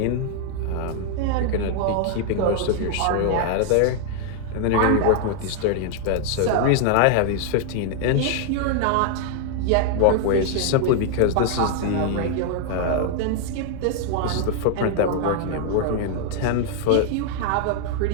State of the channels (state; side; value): different; both; correlation 0.00